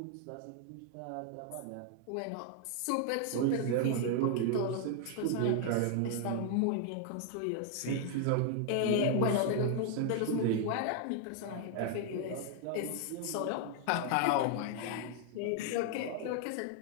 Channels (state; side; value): different; both; correlation 0.00